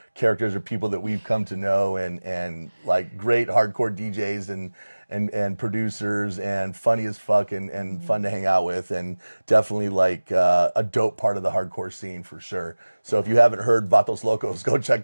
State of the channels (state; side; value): inverted; both; correlation -1.00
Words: characters or people that we've come to know, and like great hardcore DJs and producers, and funny as fuck, and fun to hang out with, and definitely like a dope part of the hardcore scene for sure. So if you haven't heard Vatos Locos, go check